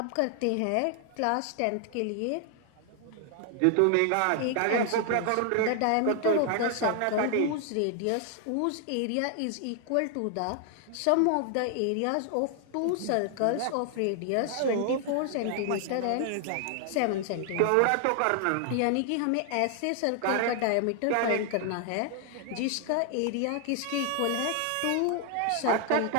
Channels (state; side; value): different; both; correlation 0.00